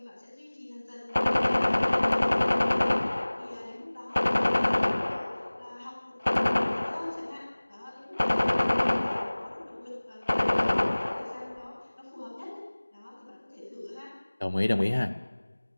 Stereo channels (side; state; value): both; inverted; correlation -1.00